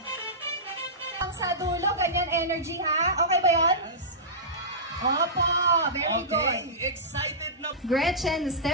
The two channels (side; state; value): both; normal; correlation -0.18